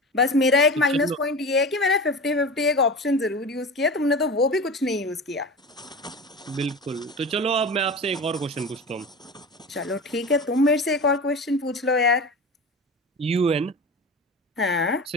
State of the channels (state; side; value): normal; both; correlation 0.30